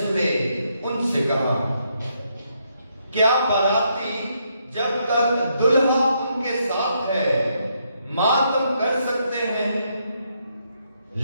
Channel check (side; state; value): both; inverted; correlation -0.76